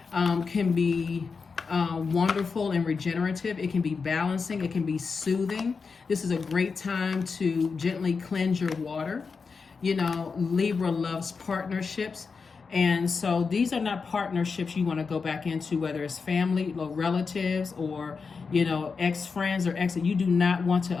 can be wonderful and regenerative. It can be balancing. It can be soothing. This is a great time to gently cleanse your water. You know, Libra loves partnerships. And so these are not partnerships you want to go back into, whether it's family or relatives or, you know, ex-friends or ex. You do not want to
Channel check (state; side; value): quieter; right; 5.0 dB